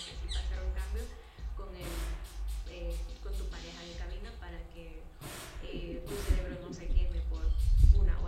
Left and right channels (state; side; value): identical; both; correlation 1.00